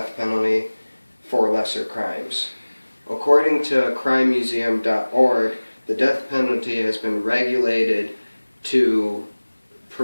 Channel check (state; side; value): inverted; both; correlation -1.00